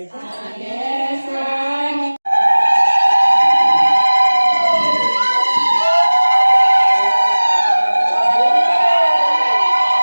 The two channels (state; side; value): inverted; both; correlation -1.00